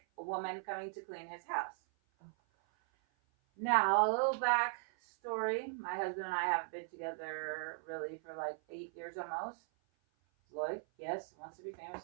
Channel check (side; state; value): left; silent; 52 dB below the other